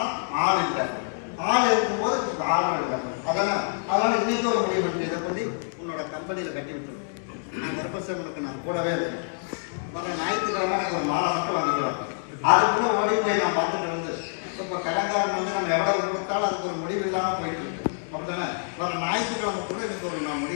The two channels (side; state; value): right; silent; digital silence